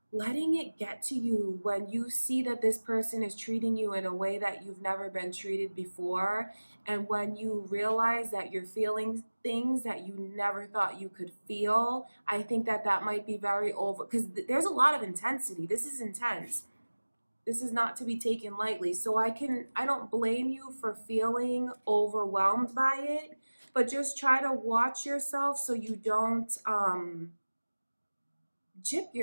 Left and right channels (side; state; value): both; inverted; correlation -1.00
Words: letting it get to you when you see that this person is treating you in a way that you've never been treated before, and when you realize that you're feeling things that you never thought you could feel. I think that that might be very over, because there's a lot of intensity. This is intense. This is not to be taken lightly. So I don't blame you for feeling overwhelmed by it, but just try to watch yourself so you don't jip